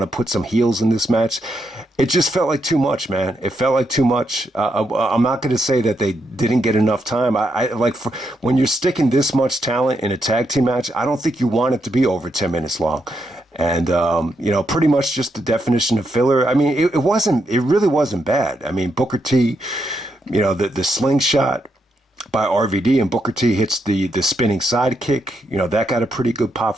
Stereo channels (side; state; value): both; normal; correlation 0.81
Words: to put some heels in this match. It just felt like too much, man. It felt like too much. I'm not going to say that they didn't get enough time. When you're sticking this much talent in a tag team match, I don't think you want it to be over 10 minutes long. And, pretty much just the definition of filler. I mean, it really wasn't bad. I mean, Booker T, the slingshot by RVD, and Booker T hits the spinning sidekick. That got a pretty good pop